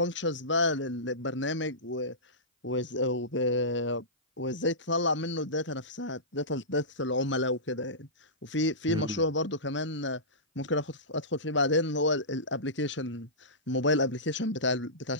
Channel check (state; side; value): normal; both; correlation -0.19